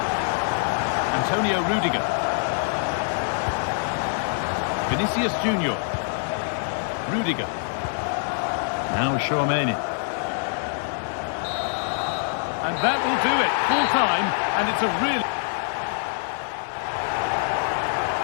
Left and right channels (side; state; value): right; silent; digital silence